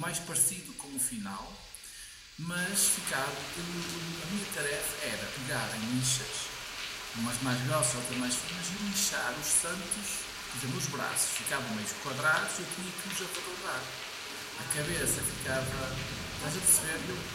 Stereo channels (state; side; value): identical; both; correlation 1.00